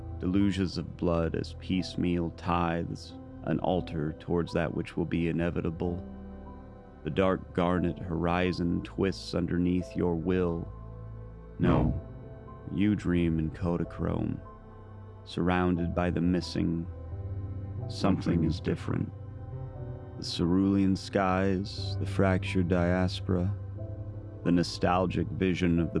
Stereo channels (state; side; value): identical; both; correlation 1.00